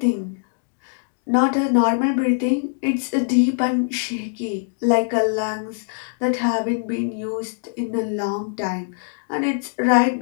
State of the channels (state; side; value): silent; right; digital silence